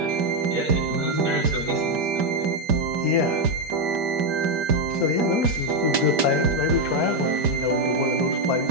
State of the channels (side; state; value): left; late; 5.1 ms